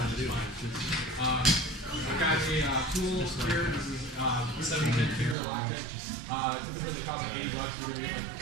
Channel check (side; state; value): left; drops out; at 5.4 s